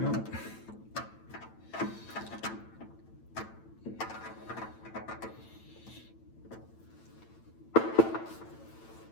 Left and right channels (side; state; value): right; late; 9.0 ms